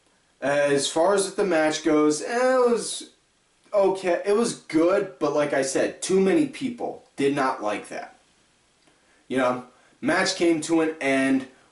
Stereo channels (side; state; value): both; identical; correlation 1.00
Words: As far as the match goes, it was okay. It was good, but like I said, too many people did not like that. You know, match came to an end